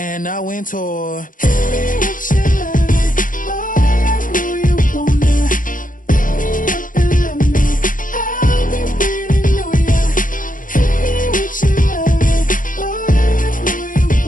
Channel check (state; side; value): late; right; 0.39 ms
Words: I went tour.